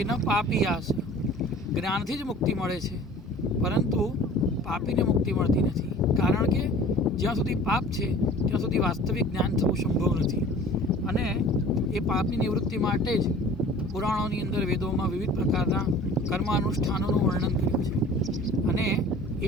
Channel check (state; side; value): normal; both; correlation 0.45